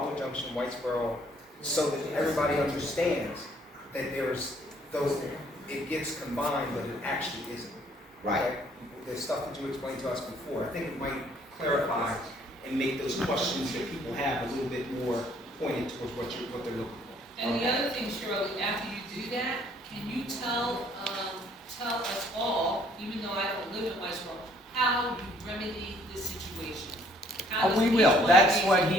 Junction, Whitesboro, so that everybody understands that it gets combined, but it actually isn't. Right. Okay? The stuff that you explained to us before, I think it might clarify and make those questions that people have a little bit more pointed towards what they're looking for. And the other thing, Shirley, after you do that, can you tell us all, even though I don't live in Whitesboro, how you remedy this situation? How does We each will. one of That's these- what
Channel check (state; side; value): normal; both; correlation 0.62